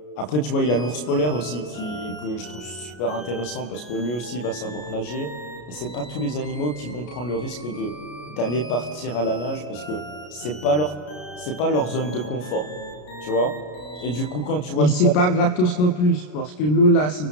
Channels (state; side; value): late; right; 33 ms